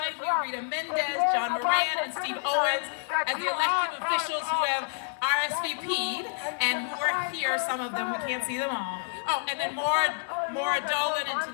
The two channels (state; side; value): silent; right; digital silence